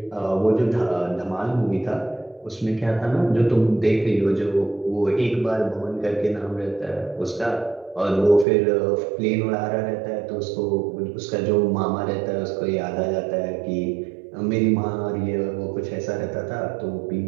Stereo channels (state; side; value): drops out; left; at 8.5 s